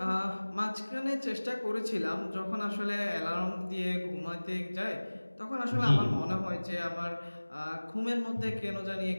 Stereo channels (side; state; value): both; inverted; correlation -1.00